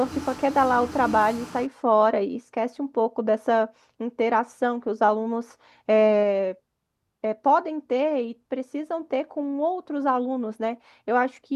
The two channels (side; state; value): both; identical; correlation 1.00